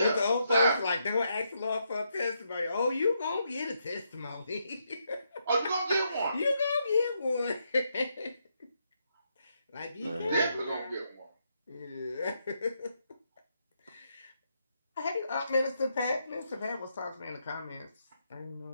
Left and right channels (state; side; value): inverted; both; correlation -0.79